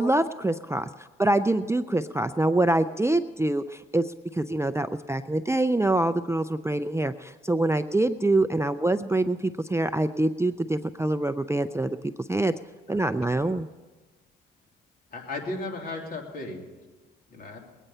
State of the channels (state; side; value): normal; both; correlation 0.86